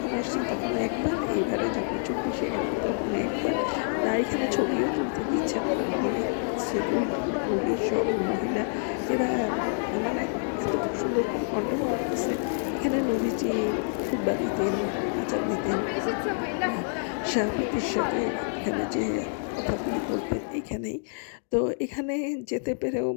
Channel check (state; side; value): silent; right; digital silence